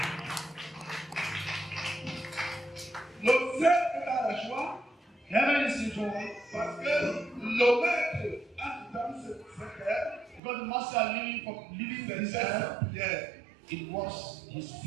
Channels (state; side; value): drops out; left; at 10.4 s